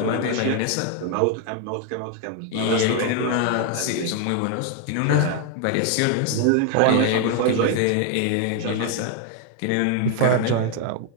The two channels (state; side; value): different; both; correlation 0.00